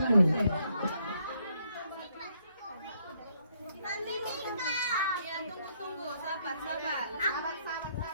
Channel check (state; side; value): inverted; both; correlation -0.72